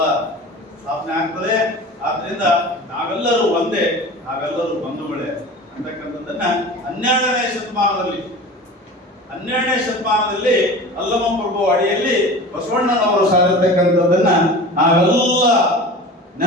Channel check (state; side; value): normal; both; correlation 0.36